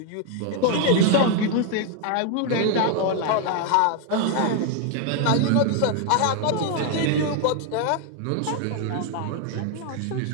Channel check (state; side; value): different; both; correlation 0.00